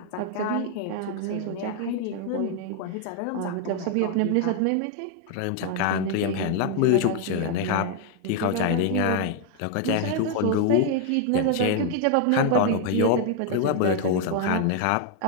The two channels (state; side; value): different; both; correlation 0.00